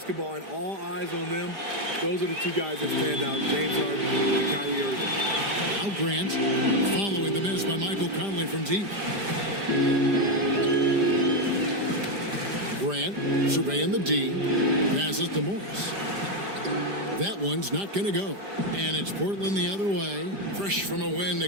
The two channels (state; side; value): late; left; 5.0 ms